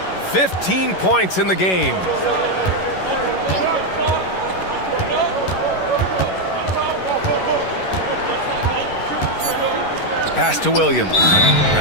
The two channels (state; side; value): late; right; 11 ms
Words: 15 points in the game. Pass to Williams.